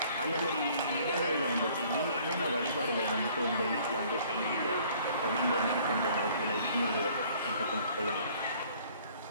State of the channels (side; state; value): both; inverted; correlation -0.57